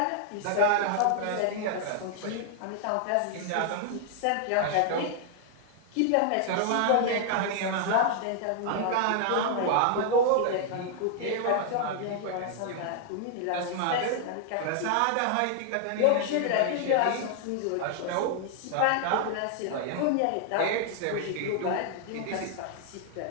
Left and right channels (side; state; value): both; different; correlation 0.00